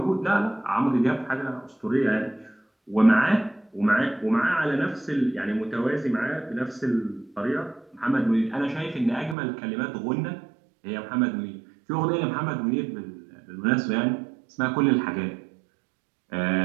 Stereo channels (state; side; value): drops out; left; at 9.3 s